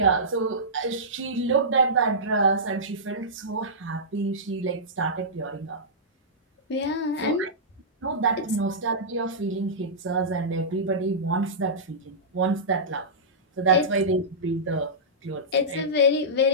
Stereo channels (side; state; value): both; normal; correlation -0.16